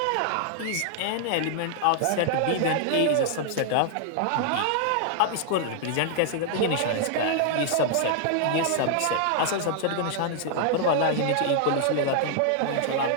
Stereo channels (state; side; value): different; both; correlation 0.00